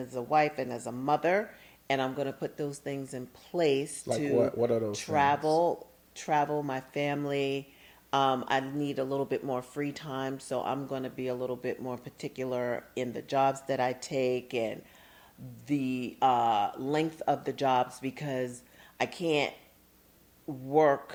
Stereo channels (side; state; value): both; identical; correlation 1.00